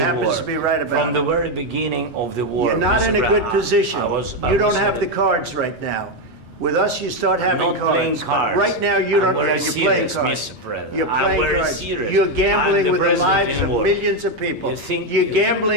happens to be right about it. From the very beginning of the war. You're not in a good position. You don't have the cards right now. With us, you start having cards. Right now, you don't. You're playing cards. You're playing cards. You're gambling with the lives of millions of people. You're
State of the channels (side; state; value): both; normal; correlation 0.06